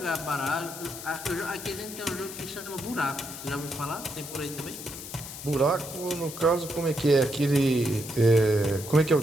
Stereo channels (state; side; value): noise; left; hiss, 11 dB below the sound